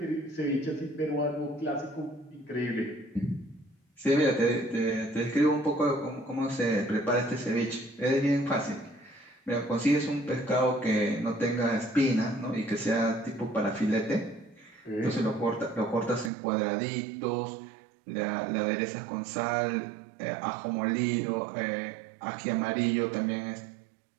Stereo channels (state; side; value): drops out; left; at 16.3 s